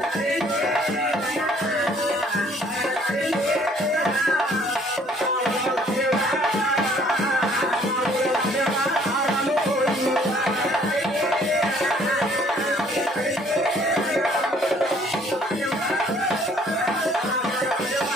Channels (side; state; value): both; normal; correlation 0.60